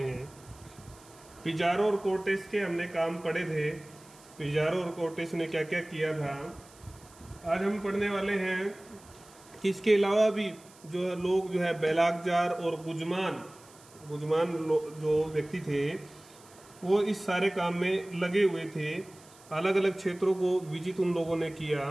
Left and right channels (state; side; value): noise; right; hiss, 24 dB below the sound